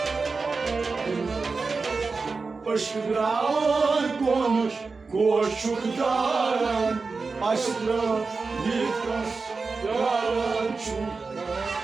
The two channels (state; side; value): quieter; left; 4.3 dB